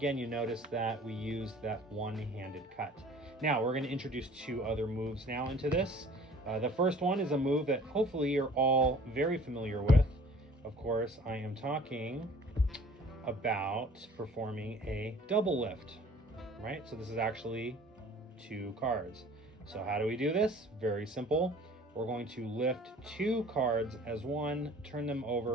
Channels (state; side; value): normal; both; correlation 0.50